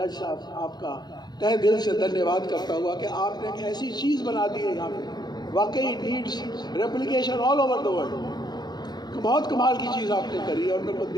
साहब आपका तहे दिल से धन्यवाद करता हुआ कि आपने एक ऐसी चीज़ बना दी है यहाँ पे, वाकई needs replication all over the world. बहुत कमाल की चीज़ आपने करी और मेरे को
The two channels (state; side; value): late; right; 0.20 ms